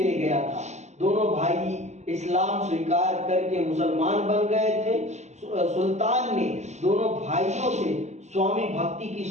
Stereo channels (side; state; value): left; late; 0.33 ms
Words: गया था। दोनों भाई इस्लाम स्वीकार करके मुसलमान बन गए थे। सुल्तान ने दोनों भाइयों से स्वामी भक्ति की